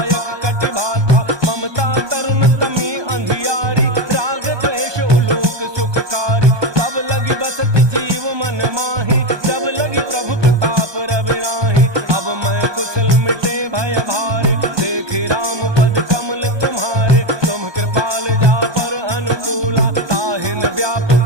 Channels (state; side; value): late; left; 1.2 ms